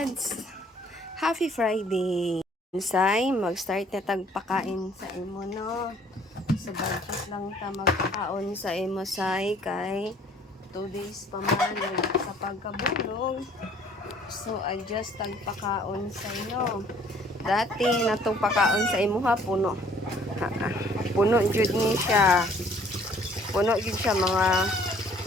Happy Friday. Ensay, mag-start na tagpakain sa imo, no? So, budget lang ta magpakaon sa imo, say, kay 2 days pa man sa pagkabulog. So, adjust tagpakaon sa inyo. Dati, natong pakaon sa imo ha, puno. Puno jud ni siya. Puno jud siya, mga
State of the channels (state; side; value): normal; both; correlation 0.58